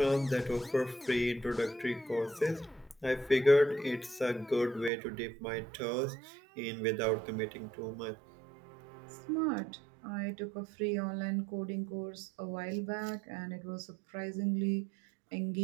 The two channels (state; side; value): drops out; left; at 4.9 s